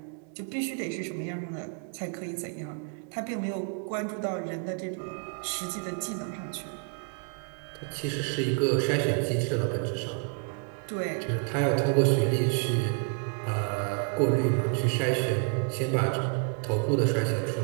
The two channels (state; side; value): quieter; left; 38.6 dB